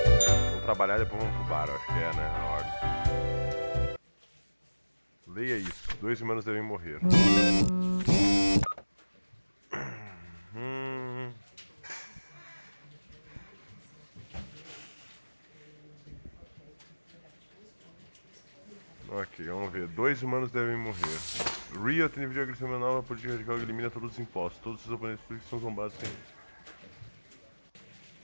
trabalhar e depois vamos pro bar, acho que é, né? A ordem. Leia isso. 2 humanos devem morrer. Ok, vamos ver. 2 humanos devem morrer. Rio tem videogame uma nova política radical que elimina todos os impostos. Todos os oponentes políticos são zombados sem...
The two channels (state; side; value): inverted; both; correlation -1.00